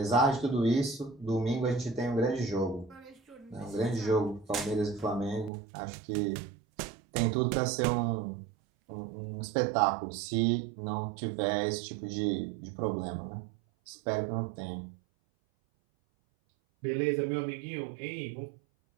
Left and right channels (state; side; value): drops out; left; at 5.5 s